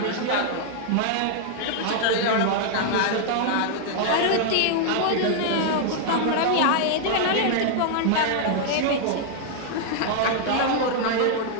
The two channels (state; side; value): different; both; correlation 0.00